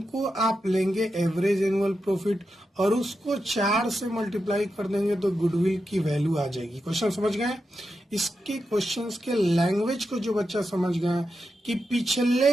आप लेंगे एवरेज एनुअल प्रॉफिट और उसको 4 से मल्टीप्लाई कर देंगे तो गुडविल की वैल्यू आ जाएगी। क्वेश्चन समझ गए? इसके क्वेश्चंस के लैंग्वेज को जो बच्चा समझ गया कि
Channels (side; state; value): both; normal; correlation 0.88